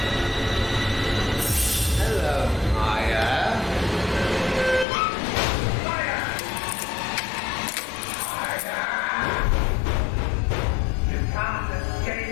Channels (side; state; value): right; drops out; at 4.9 s